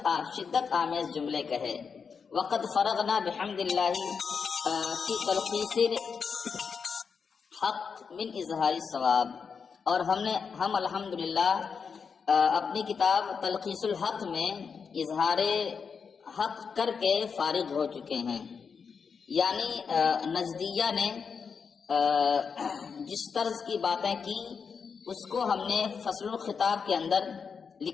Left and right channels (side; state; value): right; quieter; 5.9 dB